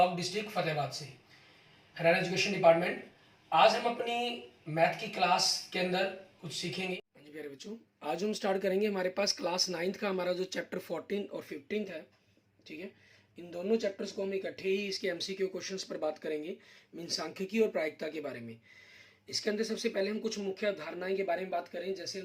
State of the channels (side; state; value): both; identical; correlation 1.00